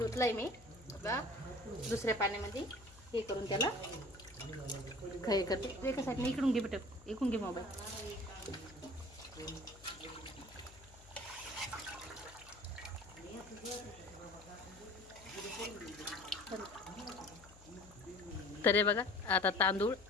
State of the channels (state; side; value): noise; left; hum, 22 dB below the sound